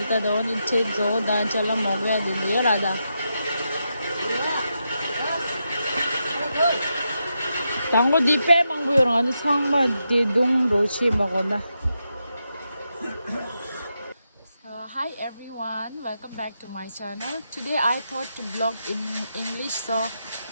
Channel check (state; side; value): inverted; both; correlation -0.85